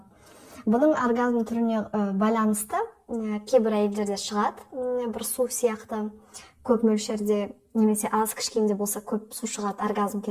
Бұның оргазм түріне байланысты кейбір әйелдерде шығады, бір су сияқты көп мөлшерде, немесе аз кішкенде болса көп су шығады оргазм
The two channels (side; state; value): both; identical; correlation 1.00